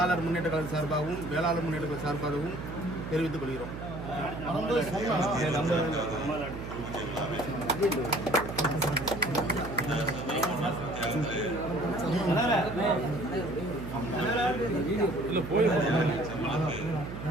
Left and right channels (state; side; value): noise; right; hum, 8 dB below the sound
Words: முன்னேற்ற கழக சார்பாகவும் வேளாளர் முன்னேற்ற கழக சார்பாகவும் தெரிவித்துக் கொள்கிறோம்.